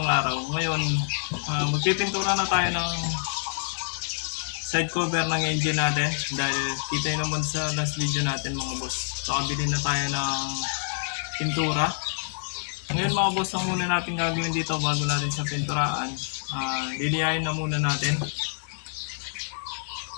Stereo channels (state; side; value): silent; right; digital silence